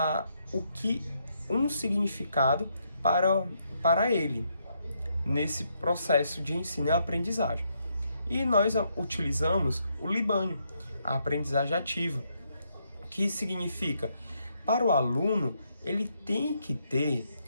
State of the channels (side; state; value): both; inverted; correlation -0.76